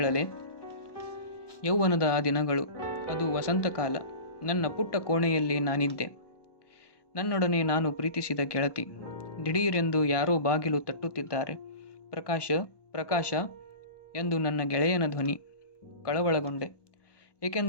ಯೌವನದ ಆ ದಿನಗಳು. ಅದು ವಸಂತಕಾಲ. ನನ್ನ ಪುಟ್ಟ ಕೋಣೆಯಲ್ಲಿ ನಾನಿದ್ದೆ. ನನ್ನೊಡನೆ ನಾನು ಪ್ರೀತಿಸಿದ ಗೆಳತಿ. ದಿಢೀರೆಂದು ಯಾರೋ ಬಾಗಿಲು ತಟ್ಟುತ್ತಿದ್ದಾರೆ. ಪ್ರಕಾಶ ಪ್ರಕಾಶ ಎಂದು ನನ್ನ ಗೆಳೆಯನ ಧ್ವನಿ. ಕಳವಳಗೊಂಡೆ.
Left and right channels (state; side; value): late; right; 1.1 ms